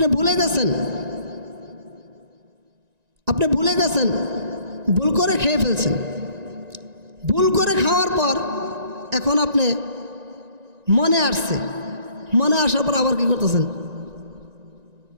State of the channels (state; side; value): late; left; 1.9 ms